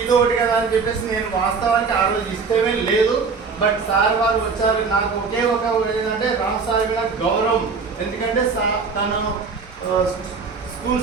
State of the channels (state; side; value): quieter; left; 5.0 dB